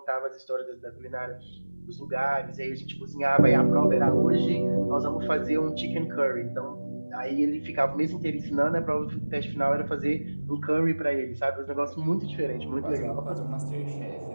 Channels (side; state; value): both; inverted; correlation -1.00